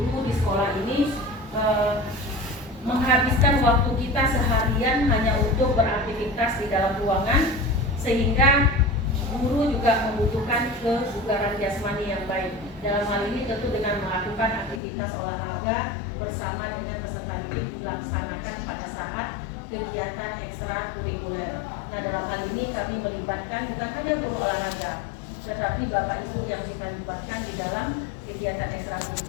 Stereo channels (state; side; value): drops out; right; at 14.8 s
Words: di sekolah ini menghabiskan waktu kita seharian hanya untuk beraktivitas di dalam ruangan, sehingga guru juga membutuhkan kebugaran jasmani yang baik. Dalam hal ini tentu dengan melakukan aktivitas olahraga bersama dengan peserta didik dilaksanakan pada saat kegiatan ekstrakurikuler. Nah, dalam hal ini kami melibatkan bukan hanya guru olahraga, tetapi Bapak Ibu yang kita libatkan di dalam kegiatan